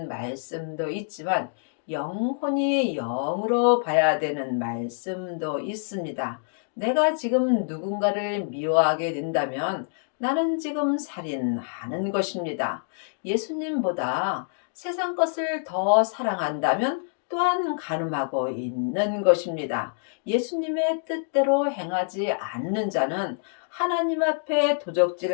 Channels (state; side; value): silent; right; digital silence